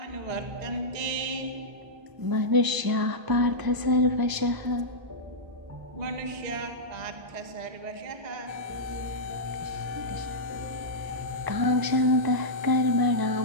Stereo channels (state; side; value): late; left; 1.0 ms